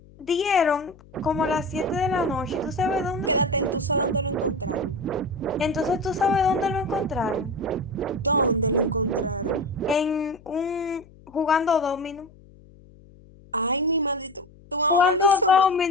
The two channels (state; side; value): noise; left; hum, 24 dB below the sound